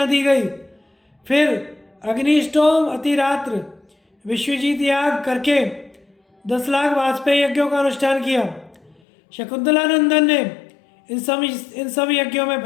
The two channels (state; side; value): drops out; right; at 9.0 s